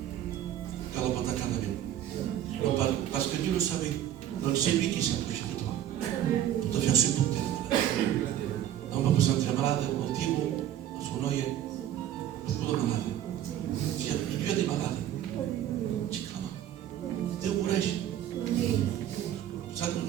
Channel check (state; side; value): quieter; left; 11.3 dB